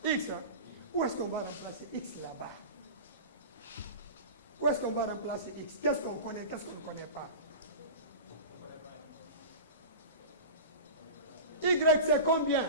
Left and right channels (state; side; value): inverted; both; correlation -0.31